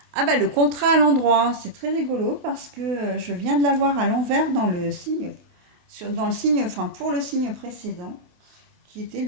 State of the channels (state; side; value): late; left; 28 ms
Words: Ah bah le contrat à l'endroit, c'est très rigolo parce que je viens de l'avoir à l'envers dans le signe, dans le signe, enfin pour le signe précédent, qui était